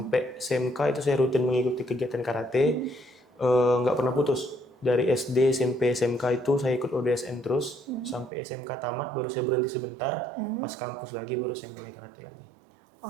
SMK itu saya rutin mengikuti kegiatan karate, nggak pernah putus. Dari SD, SMP, SMK itu saya ikut ODSN terus, sampai SMK tamat baru saya berhenti sebentar, pas kampus lagi baru saya mulai karate lagi.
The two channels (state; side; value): drops out; left; at 8.3 s